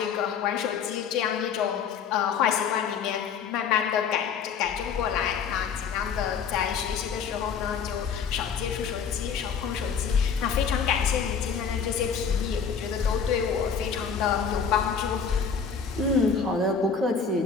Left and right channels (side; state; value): right; quieter; 6.4 dB